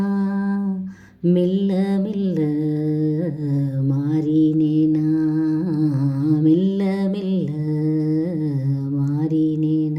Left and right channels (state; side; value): identical; both; correlation 1.00